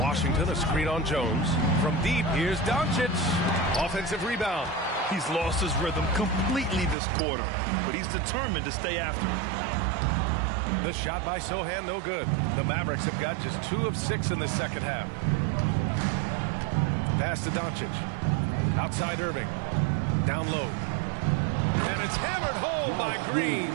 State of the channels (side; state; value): left; drops out; at 7.0 s